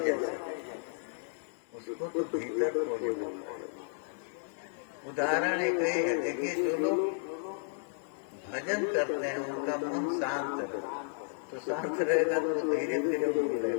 सकती, उसको तो भीतर खोजना। उदाहरण एक ही है, देखिए जो लोग भजन करते हैं उनका मन शांत रहे, तो शांत रहेगा तो धीरे धीरे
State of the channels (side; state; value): right; silent; digital silence